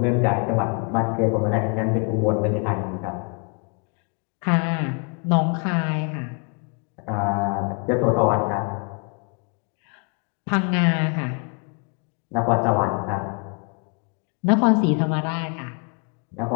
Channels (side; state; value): right; quieter; 37.9 dB